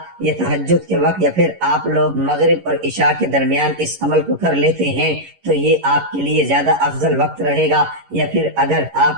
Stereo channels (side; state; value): left; late; 11 ms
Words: یا تہجد کے وقت یا پھر آپ لوگ مغرب اور عشاء کے درمیان اس عمل کو کر لیتے ہیں تو یہ آپ کے لیے زیادہ افضل وقت رہے گا، یا پھر اگر